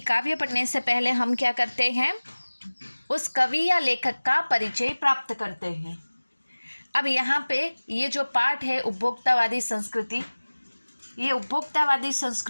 पढ़ने से पहले हम क्या करते हैं, उस कवि या लेखक का परिचय प्राप्त करते हैं। अब यहाँ पे ये जो पाठ है उपभोक्तावादी संस्कृति, ये उपभोक्तावादी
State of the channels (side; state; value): both; inverted; correlation -1.00